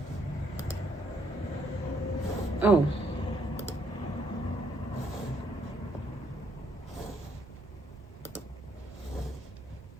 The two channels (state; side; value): normal; both; correlation 0.71